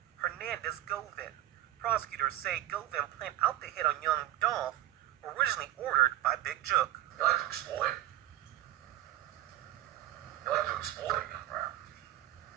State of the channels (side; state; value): left; quieter; 14.1 dB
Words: Hernandez Govin. Prosecutors say Govin planned out the hit on Young Dolph, originally ordered by Big Jook. You like to exploit. You like to exploit young rap.